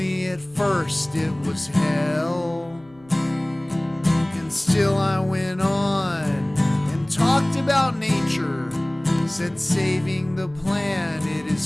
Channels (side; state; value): left; noise; hum, 28 dB below the sound